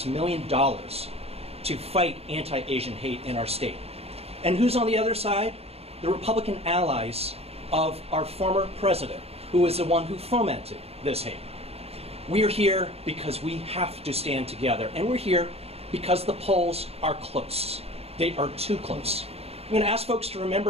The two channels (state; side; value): late; left; 0.29 ms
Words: million, to fight anti-Asian hate in our state. And who's on the other side? The Republican allies of our former president, who is the one who fomented this hate. We are here because we have to stand together, and we're here because the polls are close. They are too close. I'm going to ask folks to